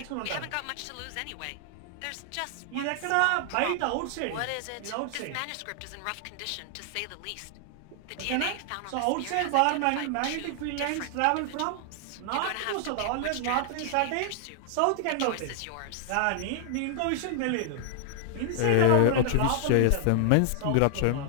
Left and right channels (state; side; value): different; both; correlation 0.00